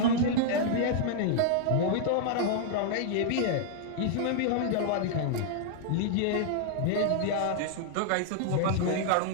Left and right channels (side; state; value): both; different; correlation -0.01